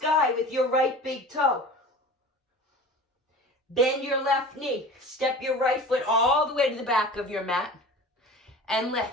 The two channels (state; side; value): normal; both; correlation 0.38